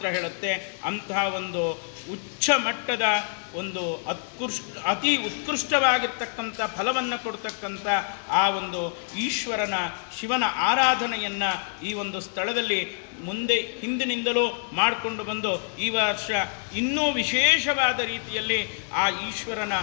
ಹೇಳುತ್ತೆ. ಅಂತಹ ಒಂದು ಉಚ್ಚ ಮಟ್ಟದ ಒಂದು ಅತಿ ಉತ್ಕೃಷ್ಟವಾಗಿರ್ತಕ್ಕಂಥ ಫಲವನ್ನು ಕೊಡ್ತಕ್ಕಂಥ ಆ ಒಂದು ಈಶ್ವರನ ಶಿವನ ಆರಾಧನೆಯನ್ನು ಈ ಒಂದು ಸ್ಥಳದಲ್ಲಿ ಹಿಂದಿನಿಂದಲೂ ಮಾಡಿಕೊಂಡು ಬಂದು ಈ ವರ್ಷ ಇನ್ನೂ ವಿಶೇಷವಾದ ರೀತಿಯಲ್ಲಿ ಆ ಈಶ್ವರನ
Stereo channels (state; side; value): silent; right; digital silence